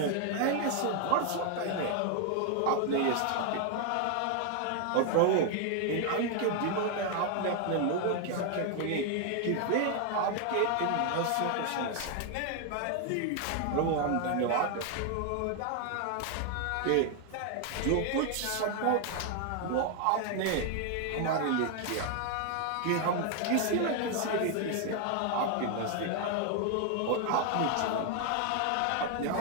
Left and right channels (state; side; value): different; both; correlation 0.00